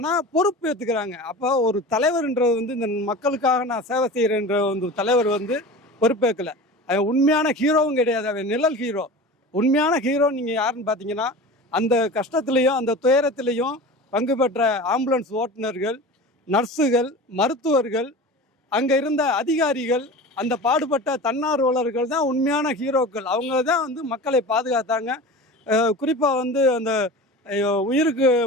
பொறுப்பு ஏற்றுக்கிறாங்க. அப்போ ஒரு தலைவர்ன்றது இந்த மக்களுக்காக நான் சேவை செய்கிறேன்ற தலைவர் பொறுப்பேற்கலை. அவன் உண்மையான ஹீரோவும் கிடையாது, அவன் நிழல் ஹீரோ. உண்மையான ஹீரோ நீங்கள் யாருன்னு பார்த்தீங்கன்னா, அந்த கஷ்டத்துலேயும் அந்த துயரத்திலையும் பங்கு பெற்ற ஆம்புலன்ஸ் ஓட்டுநர்கள், நர்ஸுகள், மருத்துவர்கள், அங்கே இருந்த அதிகாரிகள், அந்த பாடுபட்ட தன்னார்வலர்கள் தான் உண்மையான ஹீரோக்கள். அவங்க தான் மக்களை பாதுகாத்தாங்க. குறிப்பாக அந்த உயிருக்கு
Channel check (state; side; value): normal; both; correlation 0.34